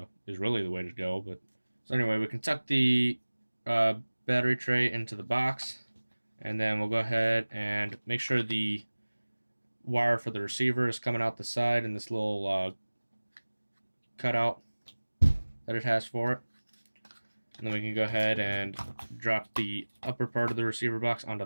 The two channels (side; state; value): both; inverted; correlation -1.00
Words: Is really the way to go. But so anyway, we can tuck the battery tray into the box, and then we'll go ahead and make sure the wire for the receiver is coming out the side in this little cutout that it has for it. And then we can go ahead and drop the upper part of the receiver box onto